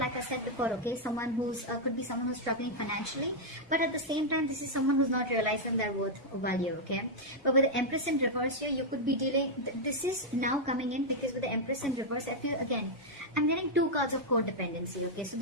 I said before, okay? Someone who's, could be someone who's struggling financially, but at the same time, this is someone who's not realizing their worth or value, okay? But with the Empress in reverse here, you could be dealing, this is now coming in because with the Empress in reverse, I feel, again, I'm getting two cards of codependency, okay? So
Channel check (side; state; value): both; normal; correlation -0.03